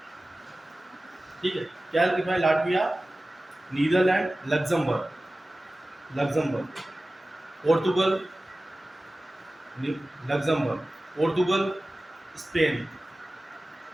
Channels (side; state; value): both; normal; correlation 0.96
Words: ठीक है, क्या लिखा है? Latvia, Netherlands, Luxembourg, Portugal, Luxembourg, Portugal, Spain,